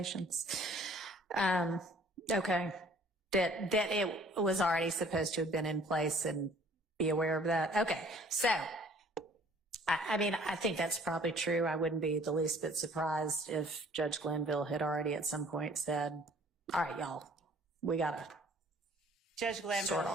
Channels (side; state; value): both; normal; correlation 0.55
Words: Okay. That it was already supposed to have been in place and be aware of that. Okay. So, I mean, I think that's probably true. I wouldn't be the least bit surprised if Judge Glanville had already at some point said, all right, y'all, we got to Judge Glanville, sort